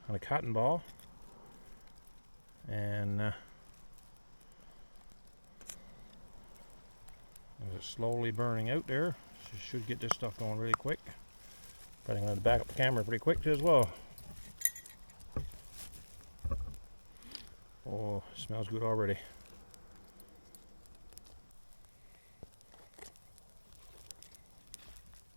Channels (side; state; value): both; inverted; correlation -1.00